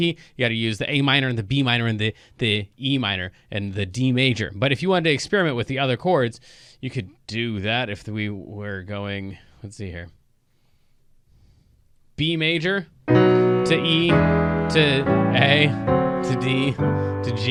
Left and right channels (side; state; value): both; identical; correlation 1.00